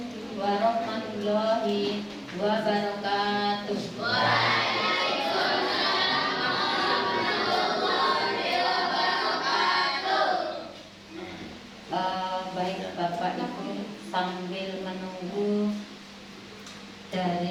warahmatullahi wabarakatuh. Baik Bapak Ibu, sambil menunggu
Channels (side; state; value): both; identical; correlation 1.00